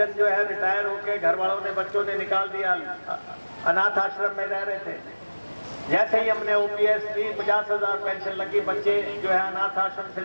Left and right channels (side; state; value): both; inverted; correlation -1.00